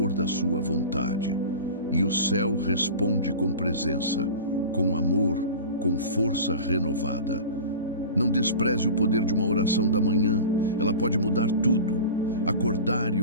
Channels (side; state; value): both; inverted; correlation -0.34